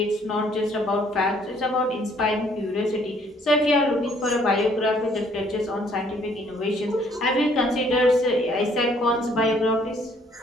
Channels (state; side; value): normal; both; correlation 0.63